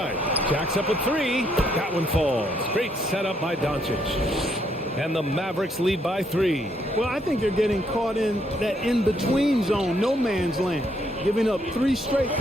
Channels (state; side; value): normal; both; correlation 0.72